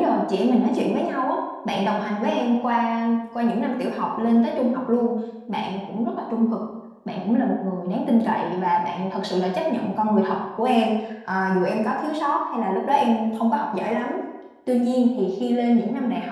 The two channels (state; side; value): identical; both; correlation 1.00